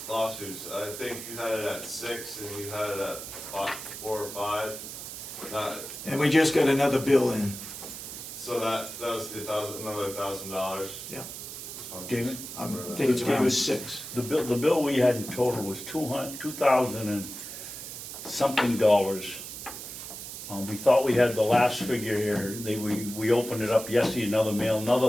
lawsuits. I think you had it at 6 and you had it at 4 or 5. And we just got another bill in. So that was the another $1,000. Yeah. David? I think it's around 6. The bill we had in total was $2,000 and something dollars. We thought we had the last figure here. We opened it up yesterday, another mail,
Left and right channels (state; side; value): noise; right; hiss, 10 dB below the sound